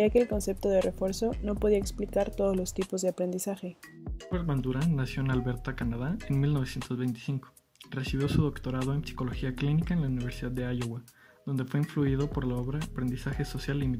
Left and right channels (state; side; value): identical; both; correlation 1.00